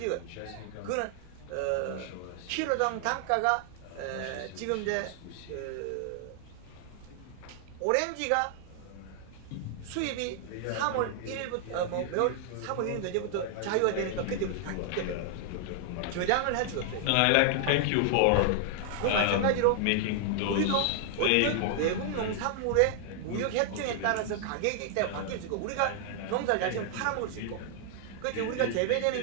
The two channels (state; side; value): different; both; correlation 0.00